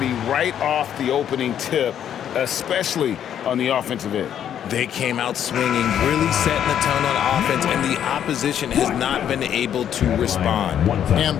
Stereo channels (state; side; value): quieter; right; 9.6 dB